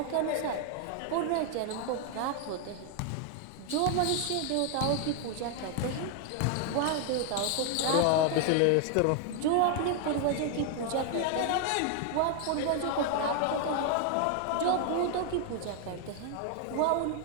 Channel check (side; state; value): both; different; correlation 0.00